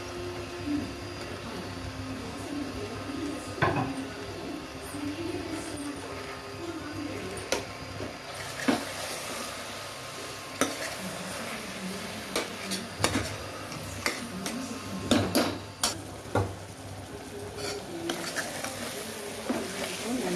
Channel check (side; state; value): both; identical; correlation 1.00